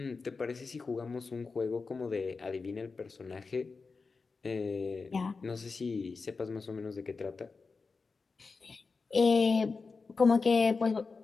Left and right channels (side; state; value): right; quieter; 4.4 dB